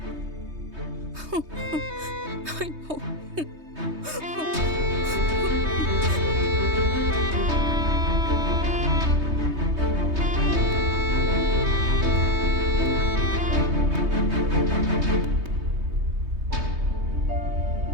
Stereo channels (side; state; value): left; late; 3.2 ms